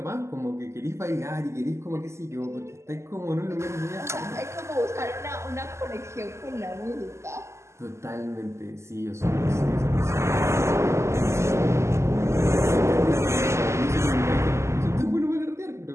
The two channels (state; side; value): late; left; 0.13 ms